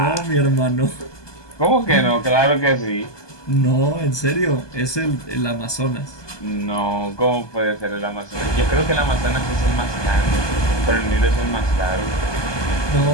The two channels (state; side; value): late; right; 1.2 ms